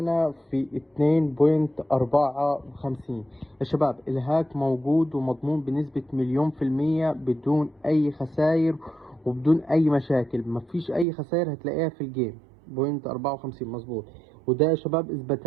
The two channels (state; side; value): drops out; left; at 11.1 s